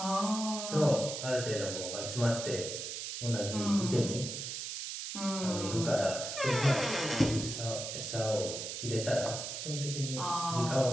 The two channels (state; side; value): noise; right; hiss, 5 dB below the sound